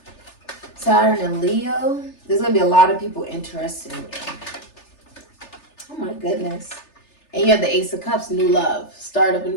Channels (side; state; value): right; late; 3.3 ms